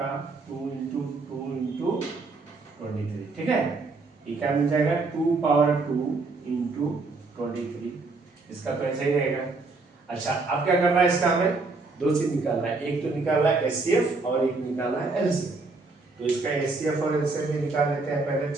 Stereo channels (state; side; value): quieter; left; 3.7 dB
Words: 2 इंटू 2 इंटू 23। ठीक है, ये क्या मिल जाएगा, 2 पावर 2 इंटू 23। इसका तो ऐसा ही रहेगा। अच्छा अब क्या करना है, इसका हमें 2 चीज निकालना है, एक तो निकालना है एचसीएफ और एक निकालना है एलसीएफ। तो इसका एचसीएफ और एलसीएफ भी निकाल लेते हैं पहले।